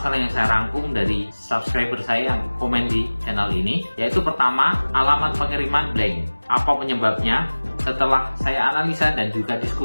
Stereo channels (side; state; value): both; inverted; correlation -1.00